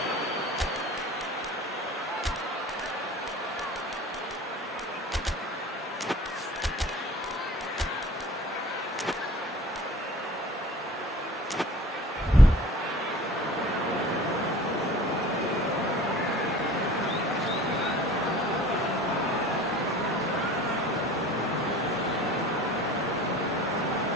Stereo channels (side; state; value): both; normal; correlation 0.45